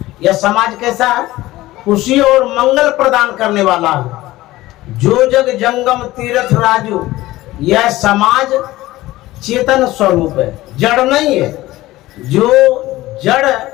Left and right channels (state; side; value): quieter; right; 17.3 dB